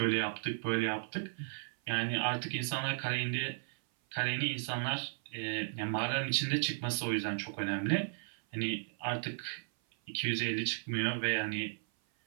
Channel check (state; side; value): silent; left; 54 dB below the other